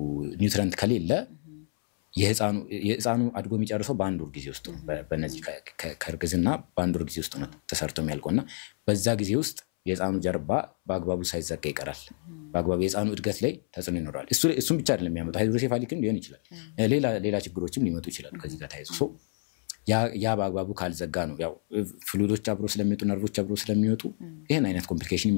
ኒውትሪየንት ከሌለ የህፃኑ አድጎ የሚጨርሰው በአንድ ወር ጊዜ ውስጥ በእነዚህ ከርግዝና በአንድ ወር ጊዜ ውስጥ ነው ተሰርቶ የሚያልቀውና በዛ ጊዜ ውስጥ የህፃኑ ጀርባ በአግባቡ ሳይዘጋ ይቀራል በአግባቡ የህፃኑ እድገት ላይ ተጽዕኖ ይኖራል እሱም ብቻ አይደለም የሚያመጣው ሃይድሮሴፋሊክም ሊሆን ይችላል ሌላ ችግሮችም ሊመጡ ይችላል ከዚህ ጋር ታይዞ ሶ ያ በአግባቡ ካልዘጋ ነው ያው ፍሉይዶች አብሮ ስለሚወጡ ነርቮች አብሮ ስለሚወጡ ይሄን አይነት ኮምፕሊኬሽን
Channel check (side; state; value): right; silent; 59 dB below the other